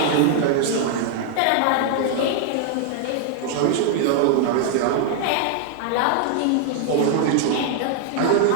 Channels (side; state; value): both; different; correlation 0.00